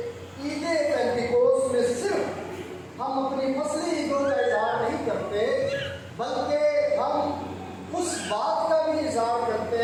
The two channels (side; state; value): both; identical; correlation 1.00